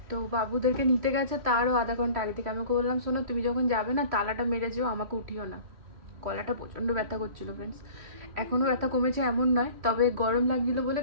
তো বাবুদেরকে নিতে গেছে তারও আধা ঘন্টা আগে থেকে। আমি ওকে বললাম শোনো, তুমি যখন যাবে না তালাটা মেরে যেও, আমাকে উঠিও না। গলাটা প্রচণ্ড ব্যথা করছিল ফ্রেন্ডস, এখনও ব্যথা কমেছে এমন নয়, তবে গরম লাগছিল বলে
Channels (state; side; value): late; left; 3.1 ms